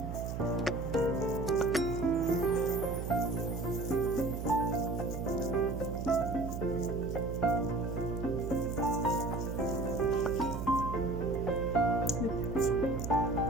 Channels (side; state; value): right; noise; hum, 5 dB below the sound